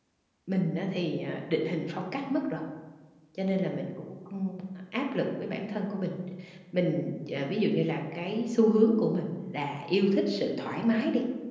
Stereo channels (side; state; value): both; identical; correlation 1.00